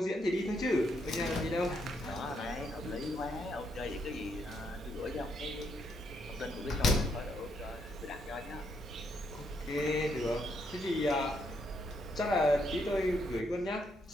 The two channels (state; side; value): normal; both; correlation 0.76